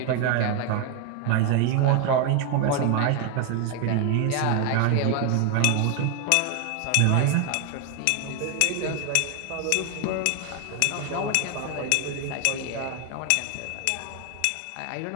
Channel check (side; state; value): both; different; correlation 0.01